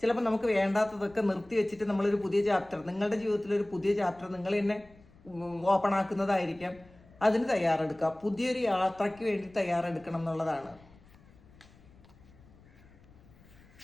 ചിലപ്പോൾ നമുക്ക് വേണ്ടാത്തതൊക്കെ നിർത്തി വെച്ചിട്ട് നമ്മളൊരു പുതിയ ചാപ്റ്റർ, നിങ്ങളുടെ ജീവിതത്തിലൊരു പുതിയ ചാപ്റ്റർ നിങ്ങൾ തന്നെ ഓപ്പൺ ആക്കുന്നതായിരിക്കാം. അതിന് തയ്യാറെടുക്കുക, പുതിയൊരു യാത്രയ്ക്ക് വേണ്ടി തയ്യാറെടുക്കണം എന്നുള്ളതാണ്.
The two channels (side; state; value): left; noise; rumble, 26 dB below the sound